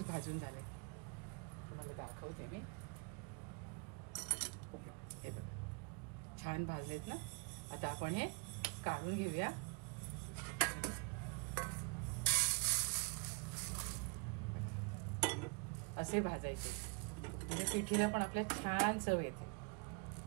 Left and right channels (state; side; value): quieter; left; 34.2 dB